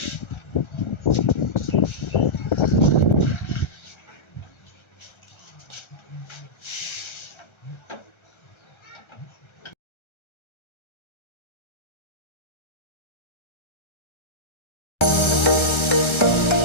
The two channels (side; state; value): right; late; 1.3 ms